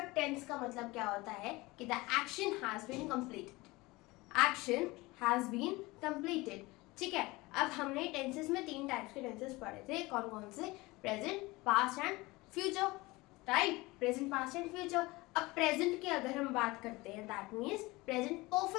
टेंस का मतलब क्या होता है कि the action has been completed. Action has been completed. ठीक है, अब हमने टेंसेस में 3 टाइप्स के टेंसेस पढ़े थे। कौन कौन से? Present, past and future. Right, present, past and future. अब प्रेजेंट की अगर हम बात करते हैं, दैट मीन्स प्रेजेंट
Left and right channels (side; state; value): right; quieter; 21.9 dB